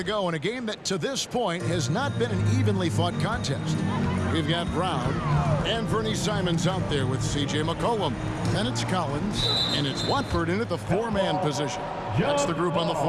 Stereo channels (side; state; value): both; identical; correlation 1.00